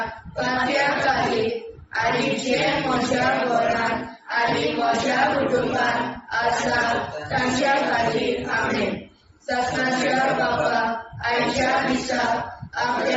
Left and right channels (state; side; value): identical; both; correlation 1.00